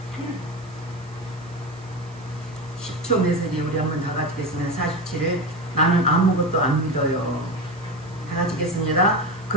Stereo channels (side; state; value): right; noise; hiss, 26 dB below the sound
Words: 10초 메시지 우리 한번 다 같이 읽겠습니다. 47을 나는 아무것도 안 믿어요. 다 같이 읽겠습니다.